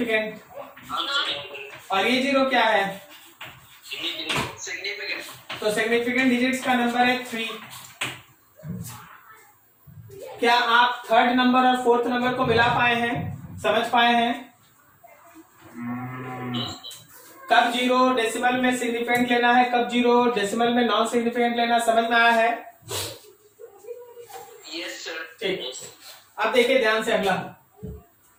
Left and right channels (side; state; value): both; identical; correlation 1.00